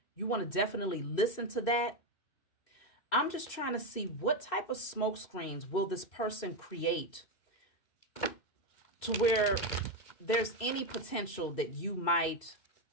you want to definitely listen to that. I'm just trying to see what type of smoke screens will this person create to where there's any potential that you might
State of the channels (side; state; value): right; late; 2.6 ms